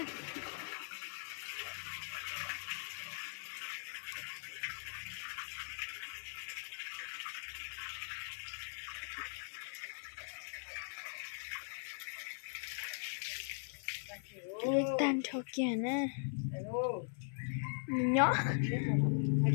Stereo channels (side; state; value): right; silent; 51 dB below the other